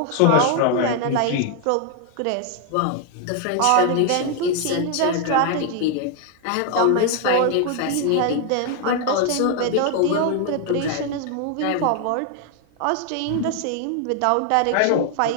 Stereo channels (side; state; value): both; different; correlation 0.00